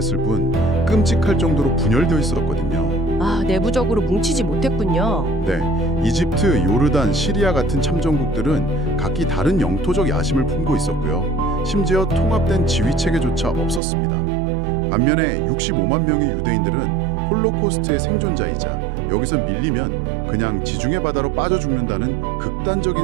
뿐 끔찍할 정도로 분열되어 있었거든요. 내부적으로 뭉치지 못했군요. 네, 이집트, 요르단, 시리아 같은 참전국들은 각기 다른 영토적 야심을 품고 있었고요. 심지어 통합된 지휘체계조차 없었습니다. 반면에 65만 명의 유대인들은 홀로코스트의 생존자이자 여기서 밀리면 그냥 지중해 바다로 빠져 죽는다는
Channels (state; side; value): drops out; left; at 13.8 s